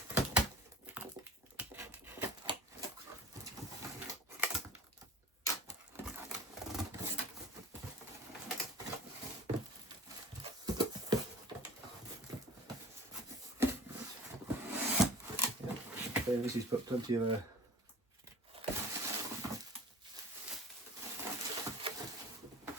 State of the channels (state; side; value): normal; both; correlation 0.41